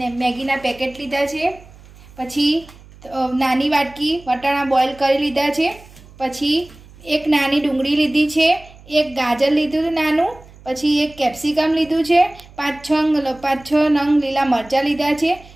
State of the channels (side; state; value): right; noise; hum, 22 dB below the sound